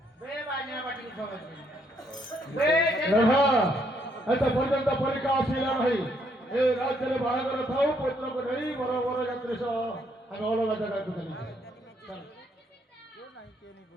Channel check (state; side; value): normal; both; correlation 0.71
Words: ଏତେ ପର୍ଯ୍ୟନ୍ତ ପରୀକ୍ଷା ଆସିଲା ନାହିଁ ଏ ରାଜ୍ୟରେ ବାହାଘର ଥାଉ ପୁତ୍ରକୁ ନେଇ ବର ବର ଯାତ୍ରୀ ସହ ଆମେ ଅଲଗା ଜାଗାକୁ ଚାଲି